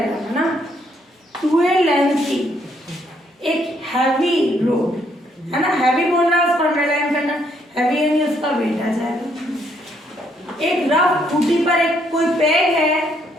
है ना। 2a लेंथ की एक हैवी रोड है ना, हैवी बोल रहा है उसको अंडरलाइन करना, हैवी यानी उसका वेट आ जाएगा। एक रफ खूंटी पर एक कोई पैग है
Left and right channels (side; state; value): both; normal; correlation 0.71